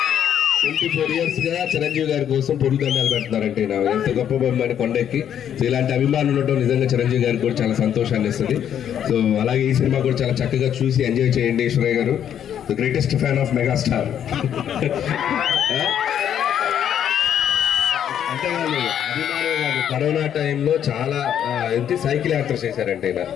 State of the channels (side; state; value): right; quieter; 9.5 dB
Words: 24 years గా చిరంజీవి గారి కోసం పొరుదండాలు పెడుతున్నారంటే ఎంత గొప్ప బొమ్మని కొండెక్కి. సో ఇలాంటి అభిమానులు ఉండటం నిజంగా చిరంజీవి గారికి కూడా చాలా సంతోషాన్ని ఇస్తుంది. సో అలాగే ఈ సినిమా కూడా చాలా చక్కగా చూసి ఎంజాయ్ చేయండి. ఈశ్వరయ్య గారు the greatest fan of megastar. అంతేకాదు, అభిమానులు కాదు, కరోనా టైంలో చాలా ఏంటి సైకిల్ యాత్ర చేశారంటే ఈయన.